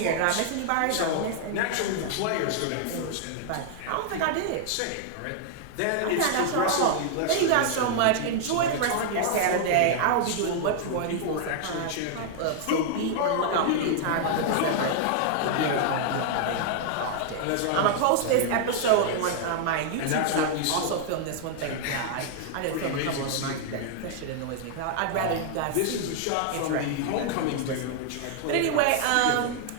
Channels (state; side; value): different; both; correlation 0.00